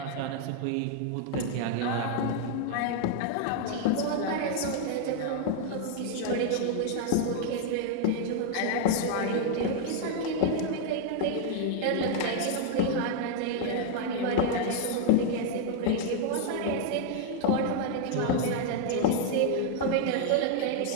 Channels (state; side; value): different; both; correlation 0.00